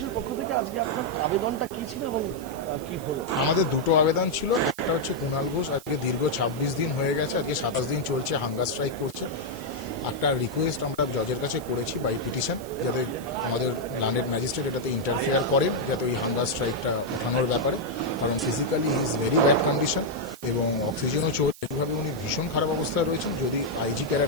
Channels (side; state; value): right; noise; hiss, 19 dB below the sound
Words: পক্ষ থেকে আজকে আপনার আবেদনটা কি ছিল এবং কি হলো? আমাদের দুটো আবেদন ছিল। একটা হচ্ছে কুণাল ঘোষ আজকে দীর্ঘ 26 দিন হয়ে গেছে, আজকে 27 দিন চলছে, হাঙ্গার স্ট্রাইক করছে। একটা রিকোয়েস্ট আমরা জজের কাছে করেছি বাই পিটিশন, যাতে আমাদের ল্যান্ডেড ম্যাজিস্ট্রেট এটাতে ইন্টারফেয়ার করেন, যাতে ওই হাঙ্গার স্ট্রাইকটা ওঠানোর ব্যাপারে। কারণ physically he is very bad condition এবং অক্সিজেনও চলছে, এইভাবে উনি ভীষণ খারাপ অবস্থায় রয়েছেন। যদি আইজি কেরা